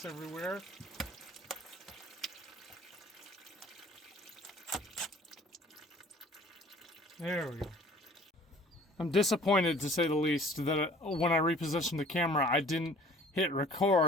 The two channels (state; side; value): normal; both; correlation 0.50